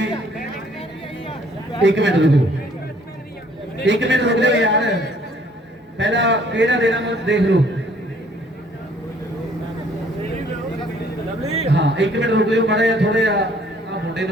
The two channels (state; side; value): normal; both; correlation 0.60